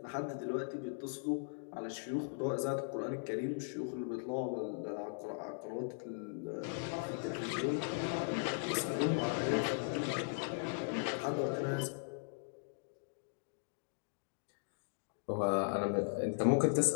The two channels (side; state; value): right; silent; digital silence